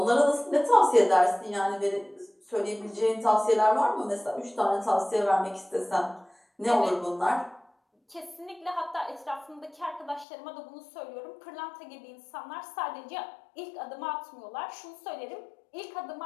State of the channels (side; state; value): right; drops out; at 10.2 s